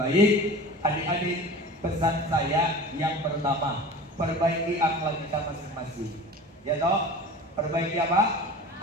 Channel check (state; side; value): normal; both; correlation 0.37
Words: adik-adik, pesan saya yang pertama, perbaiki akhlak kita masing-masing. Ya toh? Perbaiki apa?